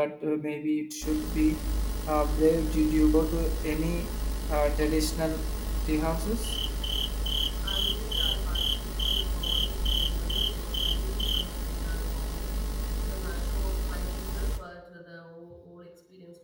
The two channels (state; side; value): identical; both; correlation 1.00